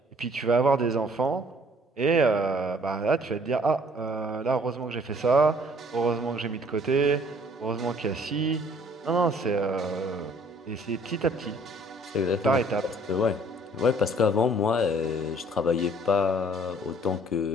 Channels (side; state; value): both; normal; correlation 0.58